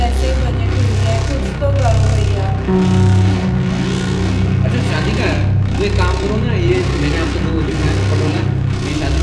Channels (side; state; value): both; identical; correlation 1.00